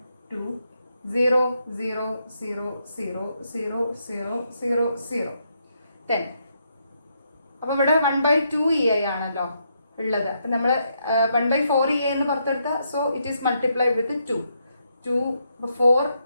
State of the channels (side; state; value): both; inverted; correlation -0.78